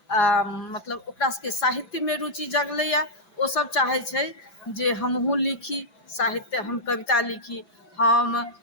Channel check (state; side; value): late; right; 5.9 ms